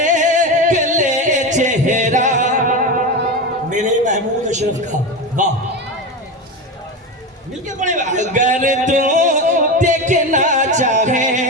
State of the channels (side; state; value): both; normal; correlation 0.20